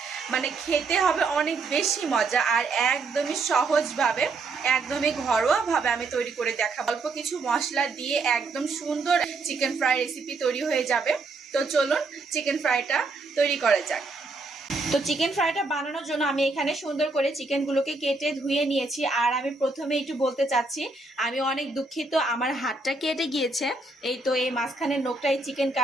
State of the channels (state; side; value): quieter; left; 3.6 dB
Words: মানে খেতে হবে অনেক বেশি মজা। আর একদমই সহজভাবে, একদমই ঘরোয়াভাবে আমি তৈরি করে দেখাবো। অল্প কিছু মশলা দিয়ে একদম সুন্দর চিকেন ফ্রাই রেসিপি তৈরি হয়ে যাবে। তো চলুন চিকেন ফ্রাইটা তৈরি করা যাক। তো চিকেন ফ্রাইটা বানানোর জন্য আমি এখানে সুন্দর করে চিকেনগুলোকে কেটে ধুয়ে নিয়েছি। আর আমি প্রথমে একটু বলতে চাচ্ছি, আমি অনেক দুঃখিত, আমার হাতটা কেটে গিয়েছে। এই তো এই মাঝখানের নোকটা এই চিকেন